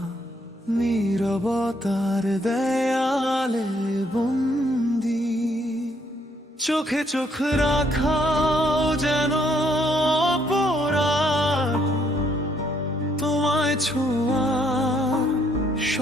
নীরবতার দেয়ালে বন্দি। চোখে চোখ রাখাও যেন অপরাধ, তোমায় ছোঁয়া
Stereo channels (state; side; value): normal; both; correlation 0.70